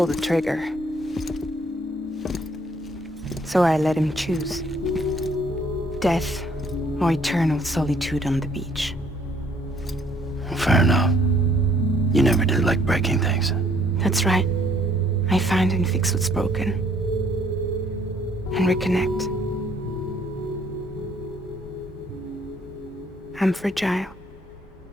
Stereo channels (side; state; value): both; normal; correlation 0.64